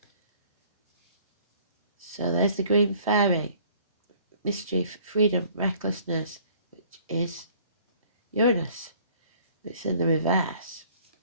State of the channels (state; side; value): inverted; both; correlation -0.55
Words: So there's the green fairy, mischief, freedom, recklessness, which is Uranus. It's in the reverse.